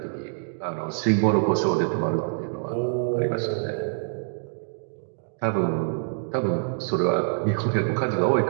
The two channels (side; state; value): left; silent; digital silence